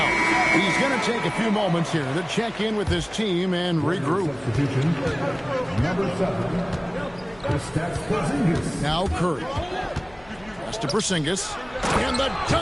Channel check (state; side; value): noise; left; hum, 25 dB below the sound